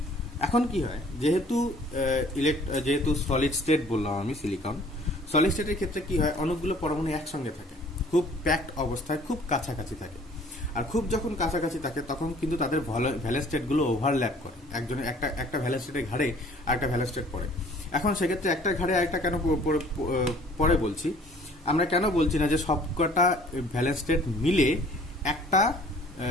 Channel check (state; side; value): normal; both; correlation 0.54